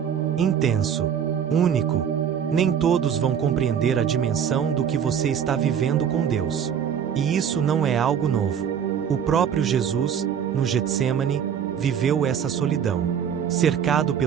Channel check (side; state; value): left; quieter; 8.2 dB